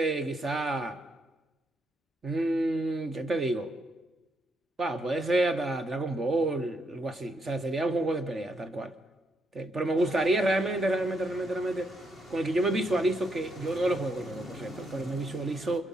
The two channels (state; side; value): normal; both; correlation 0.77